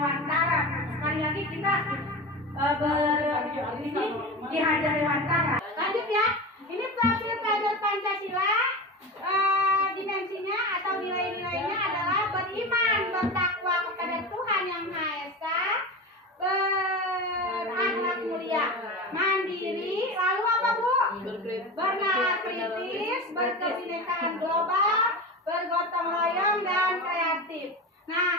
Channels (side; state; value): both; normal; correlation 0.27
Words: Sekali lagi kita ini Ki Hajar Dewantara. Lanjut ya. Ini profil kader Pancasila. Dimensinya atau nilai-nilainya adalah beriman, bertakwa kepada Tuhan Yang Maha Esa, berakhlak mulia, mandiri, lalu apa Bu? Bernalar kritis, berkebinekaan global, bergotong royong dan kreatif. Nah,